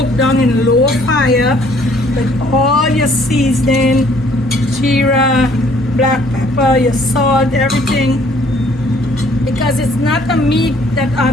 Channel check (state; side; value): normal; both; correlation 0.60